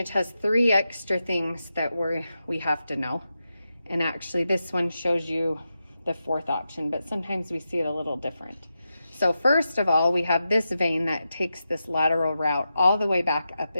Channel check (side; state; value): both; inverted; correlation -0.89